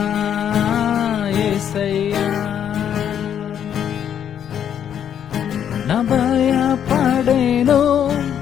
యేసయ్య. ನ ಭಯ ಪಡೆನು,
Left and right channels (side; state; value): right; quieter; 9.1 dB